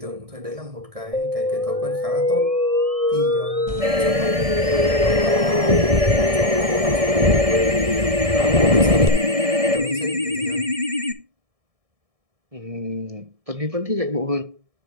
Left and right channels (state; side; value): late; left; 1.7 ms